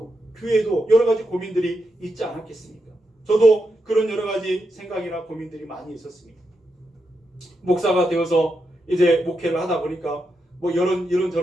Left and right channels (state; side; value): normal; both; correlation 0.84